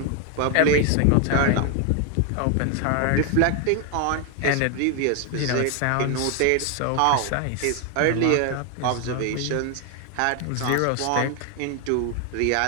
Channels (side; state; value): both; different; correlation 0.01